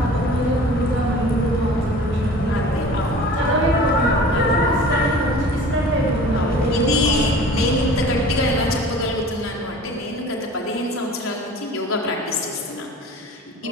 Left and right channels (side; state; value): both; normal; correlation 0.43